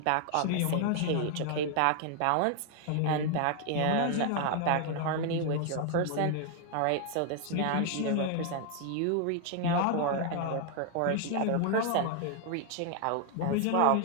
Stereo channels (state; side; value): different; both; correlation 0.00